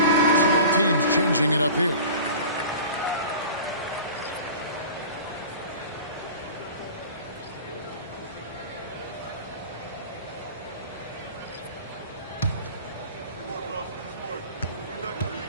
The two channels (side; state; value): both; inverted; correlation -0.39